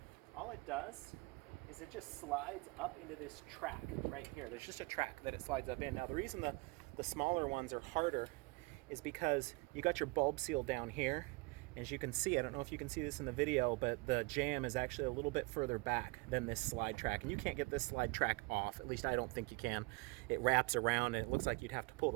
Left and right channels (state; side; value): quieter; left; 25.6 dB